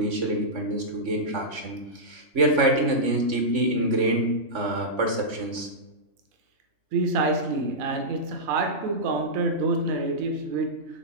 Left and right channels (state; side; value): late; left; 3.5 ms